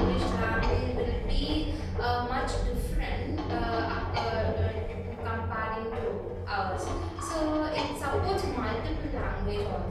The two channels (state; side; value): identical; both; correlation 1.00